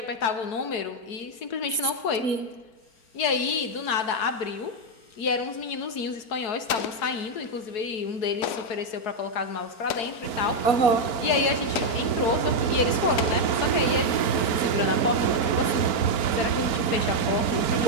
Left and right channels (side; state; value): right; late; 4.4 ms